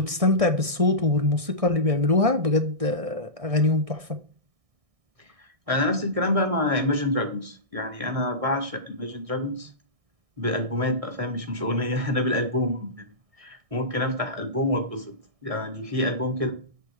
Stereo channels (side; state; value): left; late; 1.6 ms